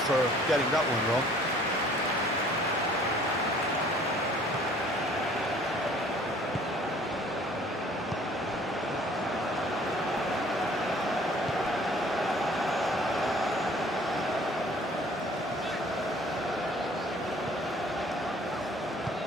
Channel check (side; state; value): both; normal; correlation 0.54